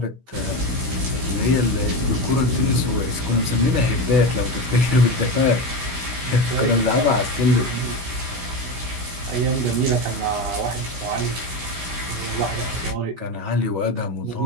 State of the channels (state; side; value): late; left; 16 ms